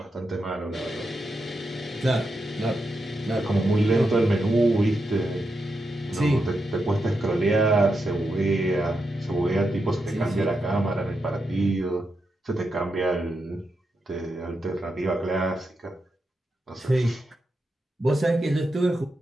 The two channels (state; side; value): normal; both; correlation 0.86